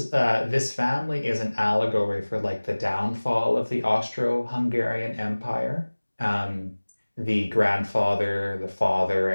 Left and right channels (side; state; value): both; inverted; correlation -1.00